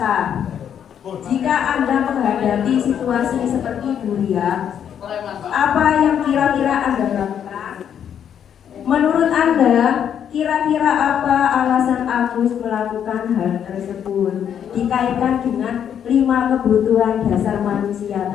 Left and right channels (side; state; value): right; quieter; 8.9 dB